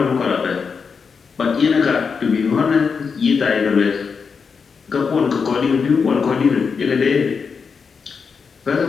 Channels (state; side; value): quieter; right; 5.6 dB